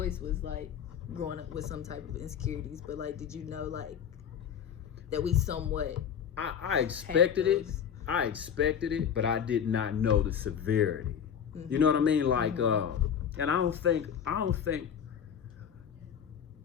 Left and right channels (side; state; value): right; quieter; 8.2 dB